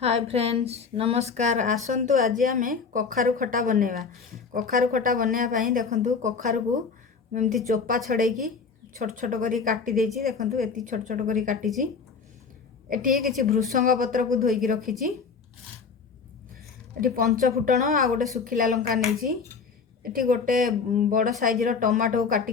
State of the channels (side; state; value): right; quieter; 5.3 dB